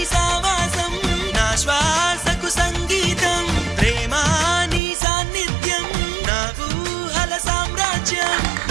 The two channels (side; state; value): left; drops out; at 4.8 s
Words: సావాసం నా శ్వాసకు సంగీతం ప్రేమా నీ సాన్నిధ్యం నా ఊహల సామ్రాజ్యం